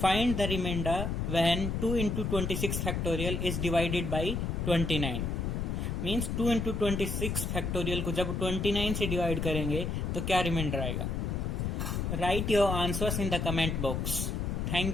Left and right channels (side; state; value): left; noise; rumble, 1 dB below the sound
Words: Find the remainder when 2 into 26 factorial is divided by 29. Means 2 into 26 factorial को जब 29 से डिवाइड करेंगे तो क्या रिमाइंडर आएगा? Right your answers in the comment box.